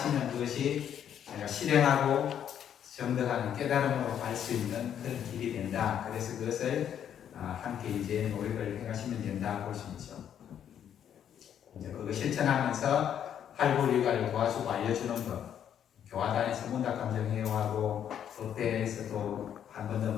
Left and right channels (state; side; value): quieter; right; 9.4 dB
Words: 그것이 제가 실행하고 정득하는 깨달음으로 갈 수 있는 그런 길이 된다. 그래서 그것을 함께 이제 노력을 해가시면 된다 볼 수 있죠. 이제 그거 실천하면서 활불일과를 도와주고 알려주는 것, 교화단에서 문답감정회화하고 법대에서도 한 번 더